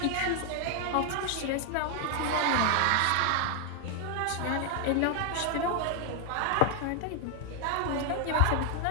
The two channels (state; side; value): different; both; correlation 0.00